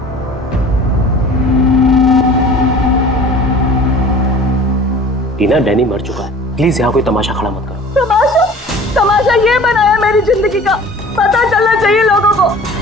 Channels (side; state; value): both; normal; correlation 0.44